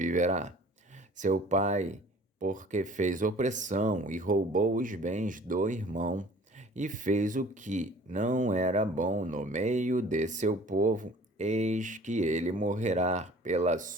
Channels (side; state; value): both; normal; correlation 0.49